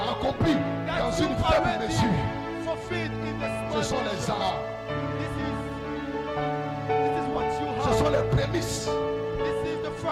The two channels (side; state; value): both; identical; correlation 1.00